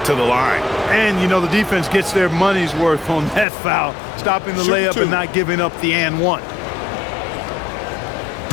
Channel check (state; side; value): drops out; right; at 3.5 s